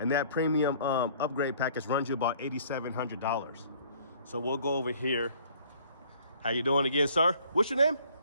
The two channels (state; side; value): inverted; both; correlation -0.57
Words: that premium upgrade package runs you about $8,700. So we'll go over here. How you doing again, sir? What's your name?